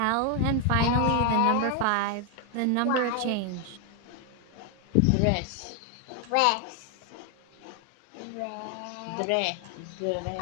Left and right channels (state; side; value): different; both; correlation 0.01